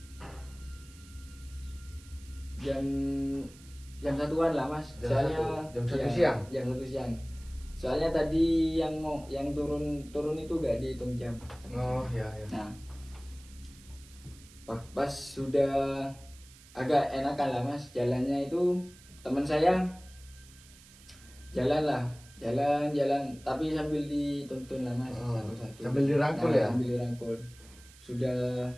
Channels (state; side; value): noise; right; hiss, 22 dB below the sound